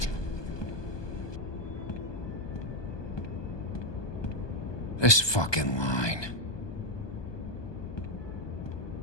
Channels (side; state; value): right; late; 1.2 ms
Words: This fucking line.